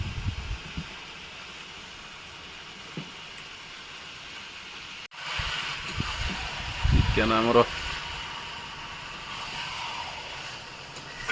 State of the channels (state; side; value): identical; both; correlation 1.00